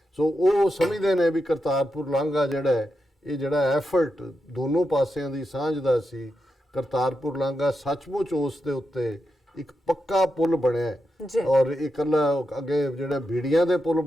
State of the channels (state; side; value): normal; both; correlation 0.87